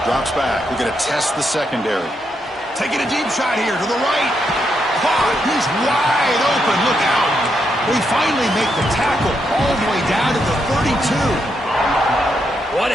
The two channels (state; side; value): normal; both; correlation 0.80